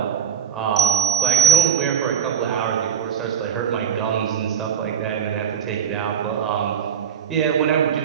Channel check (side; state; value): left; quieter; 8.0 dB